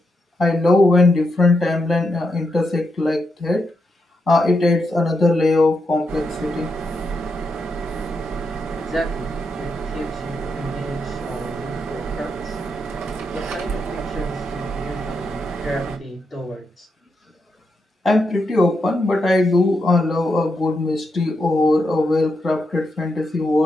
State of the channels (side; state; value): both; normal; correlation 0.83